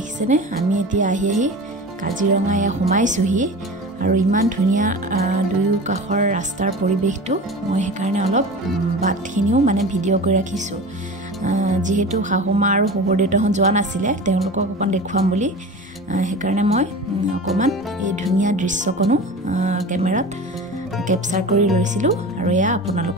আমি এতিয়া আহি কাজিৰঙা এয়া সোমাইছোহি আৰু ইমান ধুনীয়া দুয়ো কাষৰ ৰাস্তাৰ পৰিৱেশটো মই সেইকাৰণে অলপ বাটখিনিও মানে ভিডিঅ' কৰি ৰাখিছো যেহেতু শাহুমা আৰু শহুৰ দেউতাহঁত যোৱা নাছিলে তেওঁলোকক অকণ দেখুৱাম বুলি সেইকাৰণে মই অকণমান এই ধুনীয়া দৃশ্যকণো কেমেৰাত কেপচাৰ কৰি লৈছিলো আৰু এয়া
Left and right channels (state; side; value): normal; both; correlation 0.33